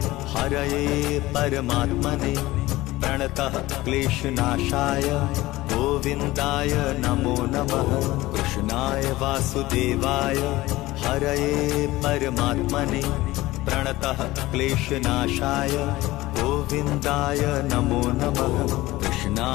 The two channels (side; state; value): right; quieter; 18.2 dB